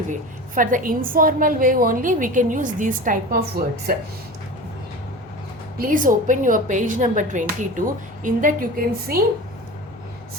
way. For the informal way only we can use these type of words. Please open your page number 22. In that you can see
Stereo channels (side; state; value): left; noise; hum, 29 dB below the sound